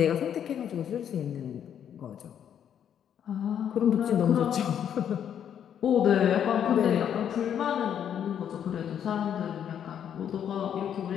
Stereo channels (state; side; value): quieter; right; 9.1 dB